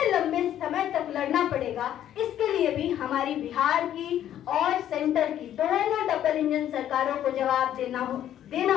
लंबे समय तक लड़ना पड़ेगा, इसके लिए भी हमारी बिहार की और सेंटर की दोनों डबल इंजन सरकारों को जवाब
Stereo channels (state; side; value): quieter; right; 11.2 dB